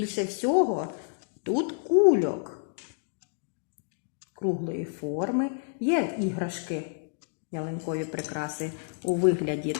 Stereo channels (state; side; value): silent; right; digital silence